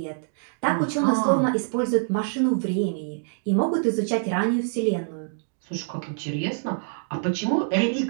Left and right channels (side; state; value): left; silent; digital silence